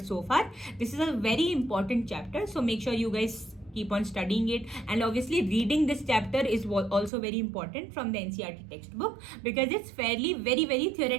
so far. This is a very important chapter, so make sure you guys keep on studying it, and obviously reading this chapter is also very important from the NCERT textbook because it's fairly very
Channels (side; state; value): left; drops out; at 7.1 s